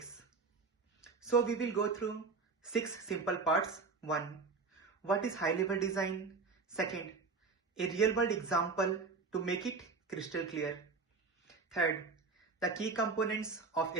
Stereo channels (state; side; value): quieter; left; 4.4 dB